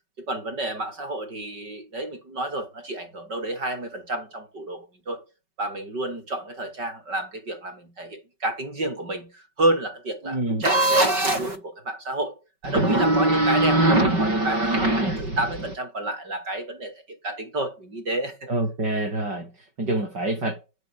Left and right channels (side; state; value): left; late; 5.3 ms